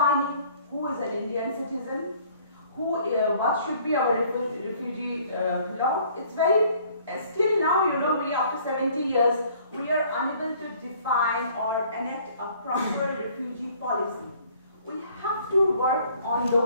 who is an Indian citizen, what should be our refugee law. It's very, still now, you know, we after 70 years, we are unable to define or enact a proper refugee policy. We have to work on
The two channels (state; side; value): inverted; both; correlation -0.57